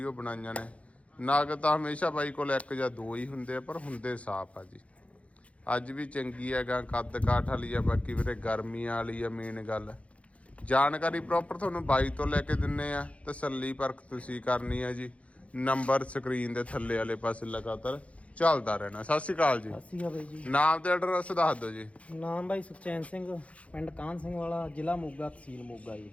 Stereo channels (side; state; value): right; late; 0.064 ms